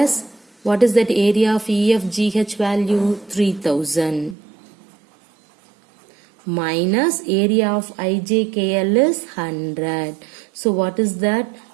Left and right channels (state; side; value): drops out; left; at 4.4 s